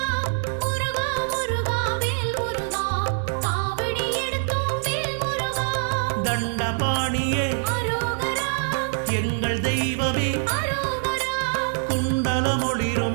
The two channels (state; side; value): silent; left; digital silence